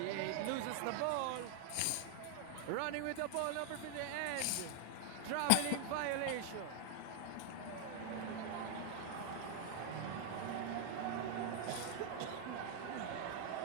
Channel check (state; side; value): different; both; correlation 0.00